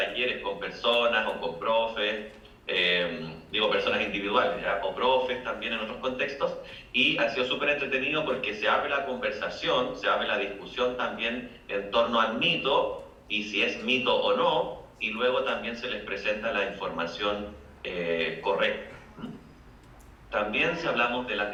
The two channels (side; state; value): both; identical; correlation 1.00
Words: con personas o con profes, personas individuales, ¿ya? O profes también en otros contextos, y ha sido súper entretenido porque se abre la conversación, se abre la discusión también en torno al mito y si es mito o no, y luego también se les presenta la información correcta. También si hablamos de las